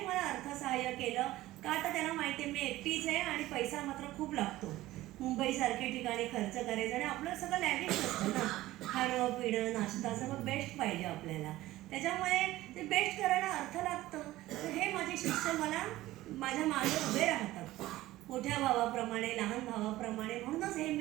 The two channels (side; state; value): left; quieter; 16.5 dB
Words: मला अर्थसहाय्य केलं का तर त्यांना माहिती आहे मी एकटीच आहे आणि पैसा मात्र खूप लागतो. मुंबईसारख्या ठिकाणी खर्च करायचा आणि आपलं सगळं लॅविश असतं ना, खाणं पिणं नाश्ता सगळं बेस्ट पाहिजे आपल्याला. त्याच्यामुळे ते बेस्ट करायला अर्थ लागतं. तर हे माझे शिष्य मला माझ्या मागे उभे राहतात, मोठ्या भावाप्रमाणे लहान भावाप्रमाणे. म्हणूनच हे